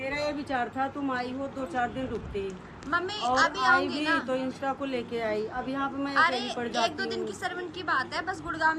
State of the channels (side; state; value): both; identical; correlation 1.00